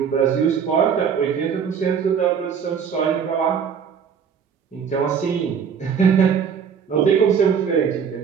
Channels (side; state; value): left; quieter; 7.1 dB